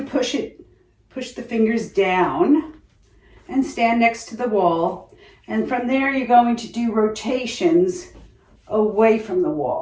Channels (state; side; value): identical; both; correlation 1.00